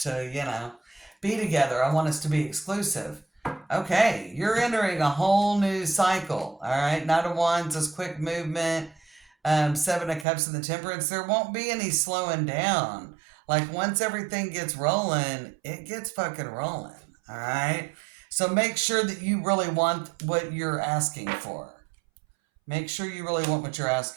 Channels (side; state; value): left; drops out; at 10.2 s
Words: to, be together. I want us to be exclusive. Okay, you're entering a whole new cycle. All right, Knight of Wands is quick movement. Seven of Cups and the Temperance. There won't be any slowing down. Like once everything gets rolling, it gets fucking rolling. All right. So make sure that you really want what you're asking for. Make sure you really want what you're